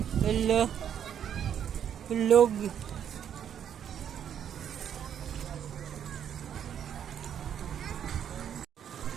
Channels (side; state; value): left; quieter; 9.1 dB